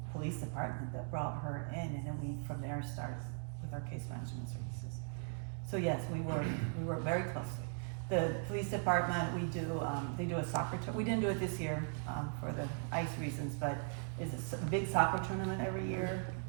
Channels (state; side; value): silent; left; 52 dB below the other